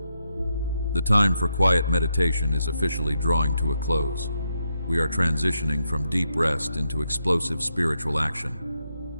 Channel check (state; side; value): inverted; both; correlation -0.82